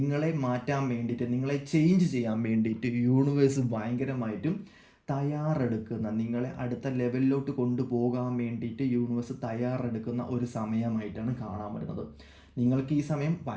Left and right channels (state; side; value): identical; both; correlation 1.00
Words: മാറ്റാൻ വേണ്ടിയിട്ട്, നിങ്ങളെ ചേഞ്ച് ചെയ്യാൻ വേണ്ടിയിട്ട് യൂണിവേഴ്സ് ഭയങ്കരമായിട്ടും തയ്യാറെടുക്കുന്ന, നിങ്ങളെ അടുത്ത ലെവലിലോട്ട് കൊണ്ടുപോകാൻ വേണ്ടിയിട്ട് യൂണിവേഴ്സ് തയ്യാറെടുക്കുന്ന ഒരു സമയമായിട്ടാണ് കാണാൻ പറ്റുന്നത്. നിങ്ങൾക്ക് ഈ സമയം